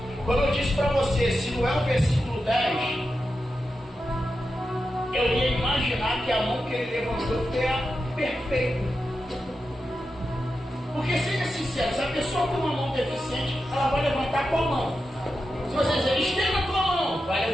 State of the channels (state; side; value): normal; both; correlation 0.89